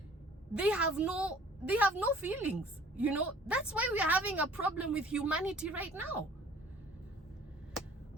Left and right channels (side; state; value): both; normal; correlation 0.52